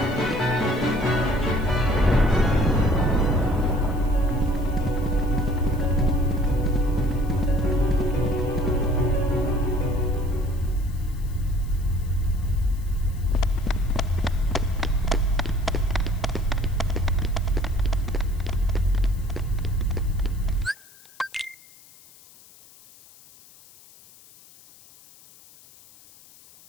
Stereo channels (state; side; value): noise; left; hiss, 24 dB below the sound